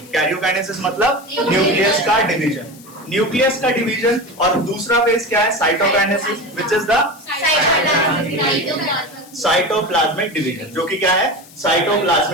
कैरियोकाइनेसिस मतलब न्यूक्लियस का डिवीजन, न्यूक्लियस का डिवीजन। और दूसरा फेज क्या है, cytokinesis, which is the cytoplasmic division, जो कि क्या है,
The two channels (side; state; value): left; noise; hiss, 22 dB below the sound